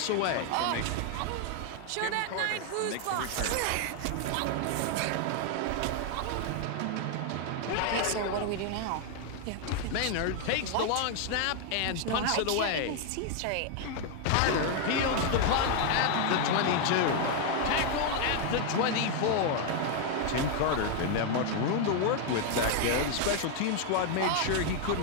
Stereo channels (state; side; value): different; both; correlation 0.00